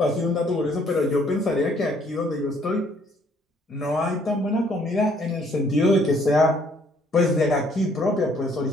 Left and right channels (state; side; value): normal; both; correlation 0.63